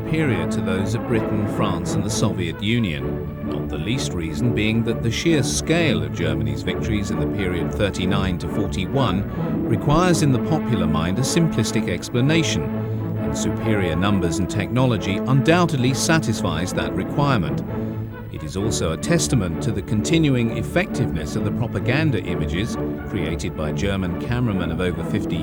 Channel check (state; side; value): identical; both; correlation 1.00